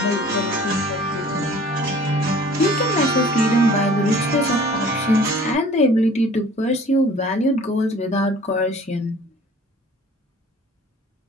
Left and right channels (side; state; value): both; normal; correlation 0.49